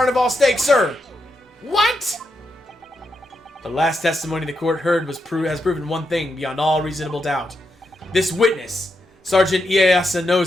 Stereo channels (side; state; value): both; normal; correlation 0.84